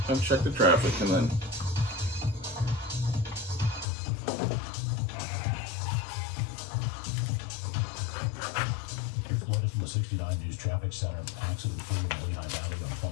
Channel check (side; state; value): right; drops out; at 3.9 s